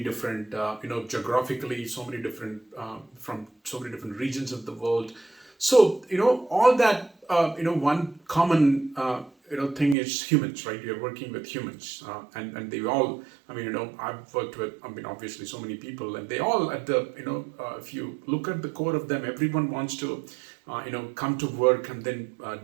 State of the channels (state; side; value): drops out; left; at 10.0 s